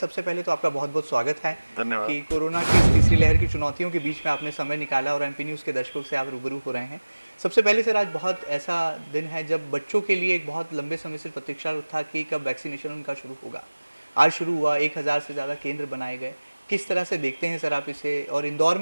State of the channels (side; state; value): both; inverted; correlation -1.00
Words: पहले तो आपका बहुत बहुत स्वागत है कि कोरोना की इस तीसरी लहर की चुनौतियों के बीच में आपने समय निकाला और एमपी न्यूज़ के दर्शकों से आप रूबरू हो रहे हैं। सबसे पहले सर, आज बहुत ऐसा दिन है जब बच्चों के लिए एक बहुत लंबे समय से प्रतीक्षा था कि कब वैक्सीनेशन उनका शुरू होगा। आज शुरू हुआ, 1000 से ज़्यादा केंद्र बनाए गए। किस तरह से देखते हैं सर आप इसे, और इंदौर